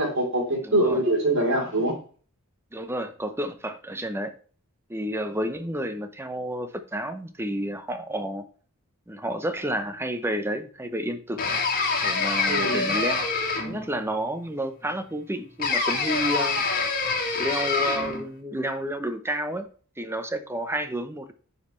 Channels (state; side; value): normal; both; correlation 0.17